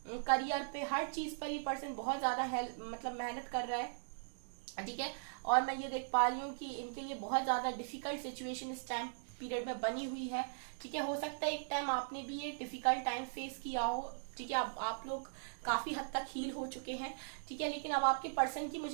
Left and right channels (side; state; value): left; silent; digital silence